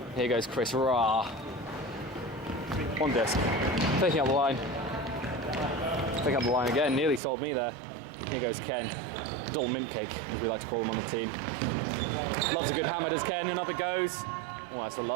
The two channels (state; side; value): drops out; left; at 7.2 s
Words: Here goes Chris Ra. On disc. Taking up the line. Taking up the line again. Nearly sold me there. Here goes Ken. Dull mint cake, as we like to call him on the team. Loves a good hammer, does Ken, and up it goes. Oh, that's a